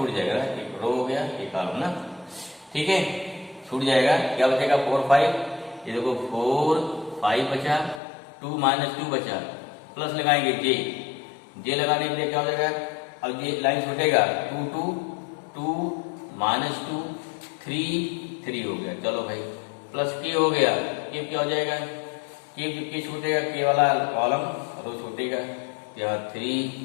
जाएगा, एक रो हो गया, एक कॉलम ना, ठीक है, छूट जाएगा। क्या बचेगा, 4 5, ये देखो 4 5 बचा, 2 -2 बचा, प्लस लगाएंगे जे लगाने के लिए क्या हो जाएगा, अब ये लाइन छूटेगा, 2 2 2 -2 3 3 हो गया, चलो भाई, प्लस के हो गया, के क्या हो जाएगा, के छूटेगा, के वाला कॉलम रो छूटेगा, यहाँ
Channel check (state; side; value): drops out; right; at 8.0 s